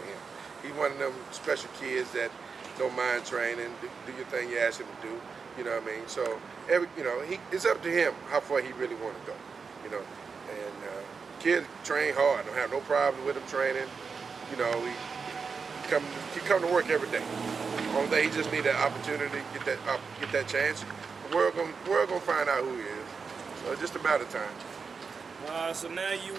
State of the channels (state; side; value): quieter; left; 5.3 dB